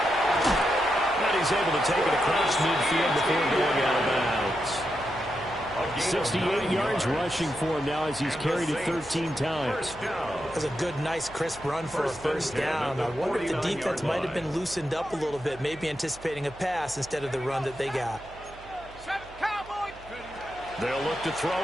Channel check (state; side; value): noise; right; hum, 20 dB below the sound